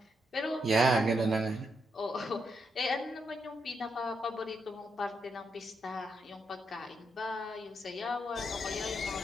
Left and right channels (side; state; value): both; normal; correlation 0.80